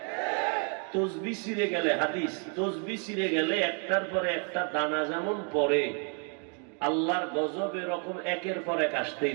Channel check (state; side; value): quieter; left; 39.6 dB